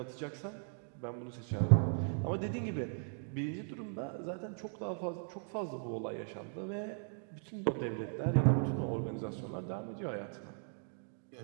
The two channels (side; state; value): left; silent; 52 dB below the other